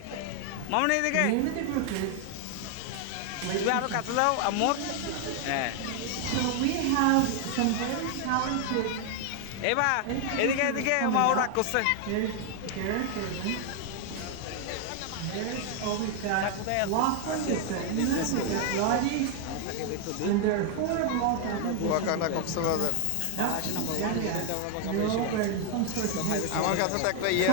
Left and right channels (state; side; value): different; both; correlation 0.00